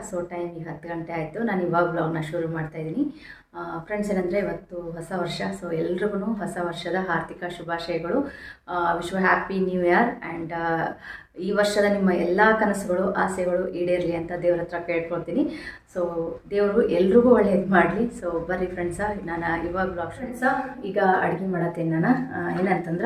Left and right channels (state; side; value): identical; both; correlation 1.00